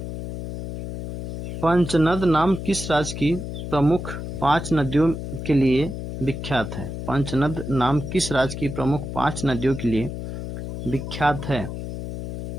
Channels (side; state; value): left; noise; hum, 7 dB below the sound